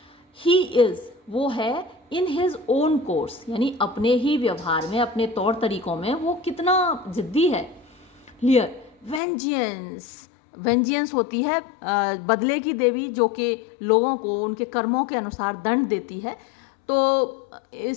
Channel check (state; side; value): drops out; right; at 9.2 s